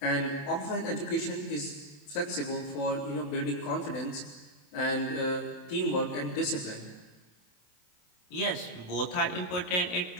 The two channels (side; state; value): right; late; 28 ms